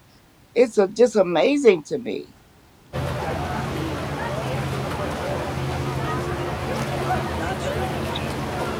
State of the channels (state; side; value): identical; both; correlation 1.00